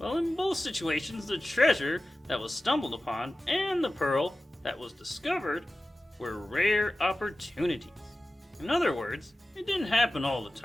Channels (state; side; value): normal; both; correlation 0.95